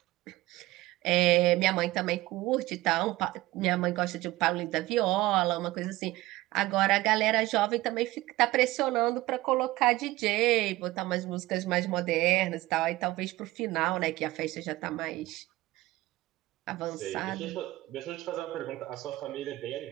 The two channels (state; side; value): quieter; left; 18.2 dB